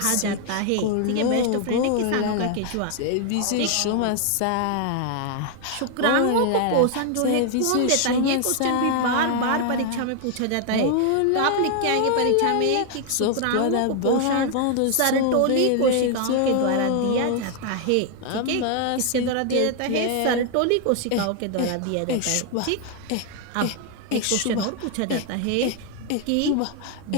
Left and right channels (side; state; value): both; different; correlation 0.00